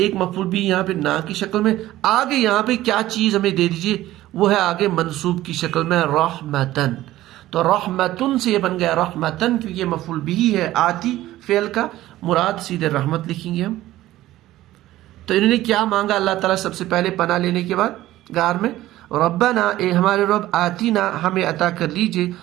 मफूल भी यहाँ पे ना की शक्ल में, आगे यहाँ पे क्या चीज हमें दे दीजिए, वो है आगे मंसूब की शक्ल में रहमतन, तो रहमतुन से ये बन गया रहमतन, क्योंकि ये मफूल बिही है आती फेल का, मुराद सीधे रहमत लिखेंगे हम। तो इन्होंने क्या मांगा अल्लाह ताला सबसे पहले पनाह लेने के बाद गार में, रब्बना ए हमारे रब, आतीना हमें अता कर लीजिए,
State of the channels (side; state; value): left; quieter; 15.3 dB